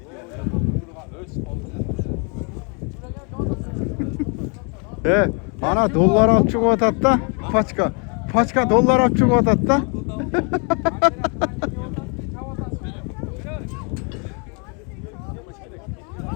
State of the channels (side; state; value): right; quieter; 36.1 dB